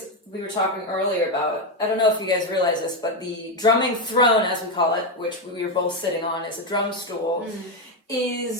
we were talking earlier about, I don't know if you guys realize this, but the drumming throne, as we call it, which we were both sitting on, is a drum stool,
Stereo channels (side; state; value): both; normal; correlation 0.07